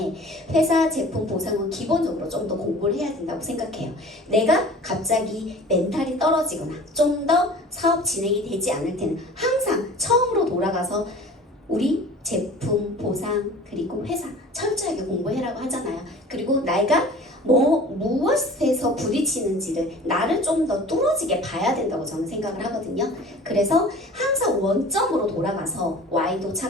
회사 제품 보상은 기본적으로 좀 더 공부를 해야 된다고 생각해요. 내가 갑자기 멘탈이 떨어지거나 좀 더 사업 진행이 되지 않을 때는 항상 처음으로 돌아가서 우리 제품 보상 그리고 회사 철저하게 공부해라고 하잖아요. 그리고 내가 무엇에서 부딪히는지를 나를 좀 더 뚫어지게 봐야 된다고 저는 생각을 하거든요. 그래서 항상 원점으로 돌아가서 Y도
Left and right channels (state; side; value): normal; both; correlation 0.43